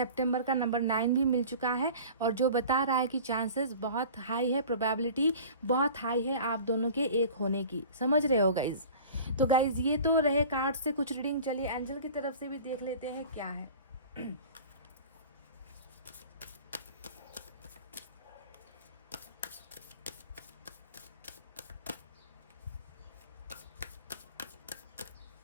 का नंबर 9 भी मिल चुका है, और जो बता रहा है कि चांसेस बहुत हाई है, प्रोबेबिलिटी बहुत हाई है आप दोनों के एक होने की। समझ रहे हो गाइज? तो गाइज ये तो रहे कार्ड से कुछ रीडिंग, चलिए एंजल की तरफ से भी देख लेते हैं क्या है।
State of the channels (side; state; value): both; inverted; correlation -0.41